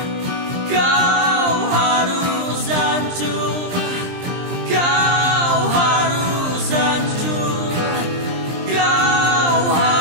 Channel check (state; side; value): late; left; 23 ms